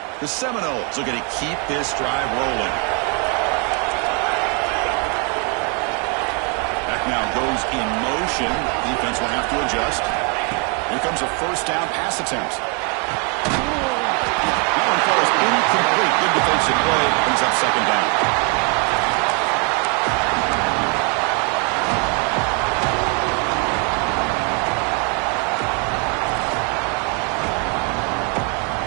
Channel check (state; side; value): quieter; left; 36.1 dB